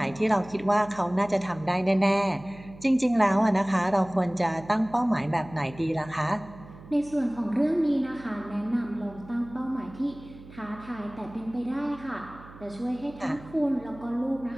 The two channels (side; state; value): right; noise; hum, 19 dB below the sound